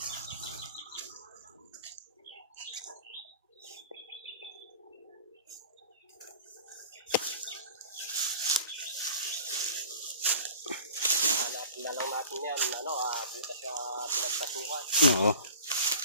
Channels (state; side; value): inverted; both; correlation -0.41